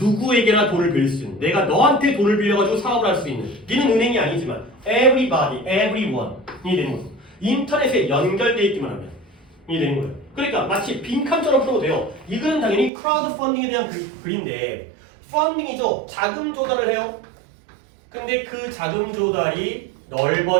돈을 빌릴 수 있는 내가 너한테 돈을 빌려가지고 사업을 할 수 있는 니는 은행이 아니지만 everybody, everyone이 되는 거죠. 인터넷에 연결돼 있기만 하면 이 되는 거예요. 그러니까 마치 빈칸처럼 풀어도 돼요. 이거는 당연히 크라우드 펀딩에 대한 글인데 펀딩이죠. 자금 조달을 해요. 근데 그 자금 조달이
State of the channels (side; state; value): left; drops out; at 12.9 s